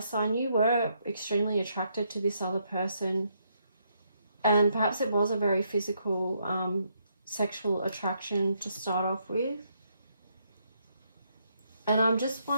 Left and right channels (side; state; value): both; inverted; correlation -0.75